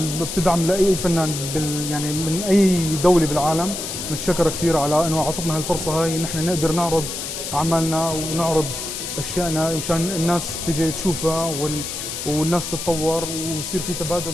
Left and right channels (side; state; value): left; noise; hiss, 6 dB below the sound